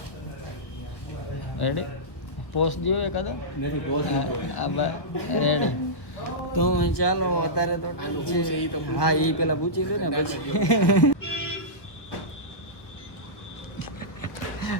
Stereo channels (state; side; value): late; right; 1.3 ms